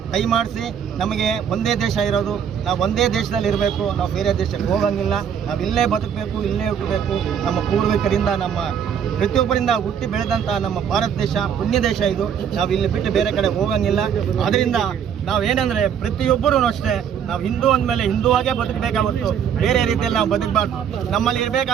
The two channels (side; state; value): left; quieter; 8.2 dB